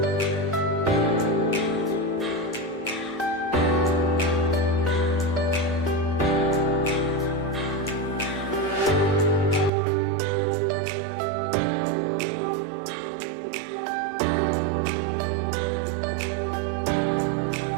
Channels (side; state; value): left; drops out; at 9.7 s